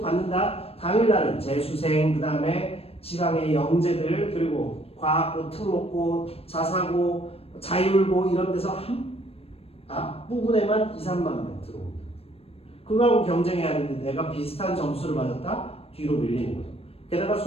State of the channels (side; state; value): right; late; 0.28 ms